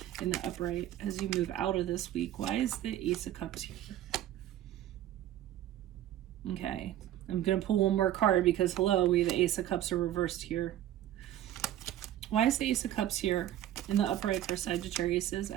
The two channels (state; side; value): quieter; left; 12.5 dB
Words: in the upright as you move out of this week. Why is the Ace of Cups here? Okay, I'm going to pull one more card because, hello, we have the Ace of Cups are reversed here. Why is the Ace of Cups here in the upright for Sagittariuses